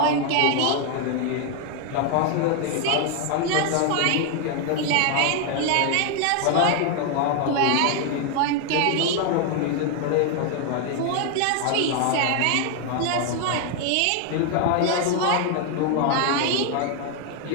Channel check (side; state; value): both; different; correlation 0.01